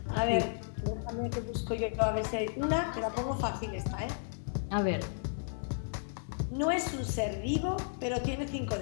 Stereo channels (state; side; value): silent; right; 55 dB below the other